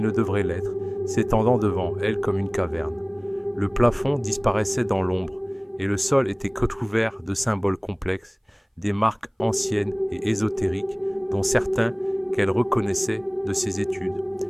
ne devrait l'être, s'étendant devant elle comme une caverne. Le plafond disparaissait dans l'ombre, et le sol était recouvert de symboles complexes, des marques anciennes et ésotériques, dont certains qu'elle reconnaissait de ses études.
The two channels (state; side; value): identical; both; correlation 1.00